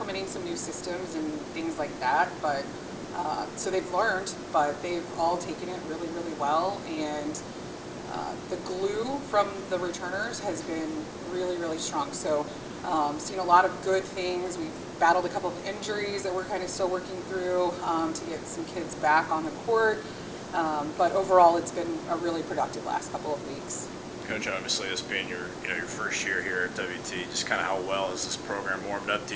some new systems and things like that, but so they've learned, but they've all taken it really, really well. And the glue from the returners has been really, really strong. So seen a lot of good things. We've battled a couple of injuries that we're kind of still working through to get some kids back on the court. But overall, it's been a really productive last couple of weeks. Coach, obviously this being your first year here at WT, just kind of how well is this program warmed up to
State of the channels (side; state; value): both; identical; correlation 1.00